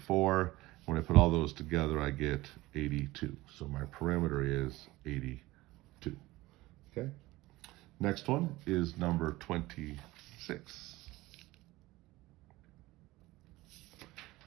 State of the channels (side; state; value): left; quieter; 19.1 dB